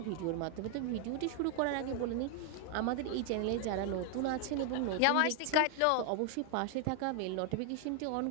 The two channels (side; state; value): both; different; correlation 0.00